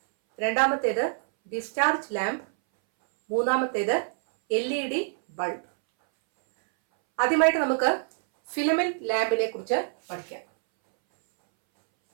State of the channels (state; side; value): silent; left; 61 dB below the other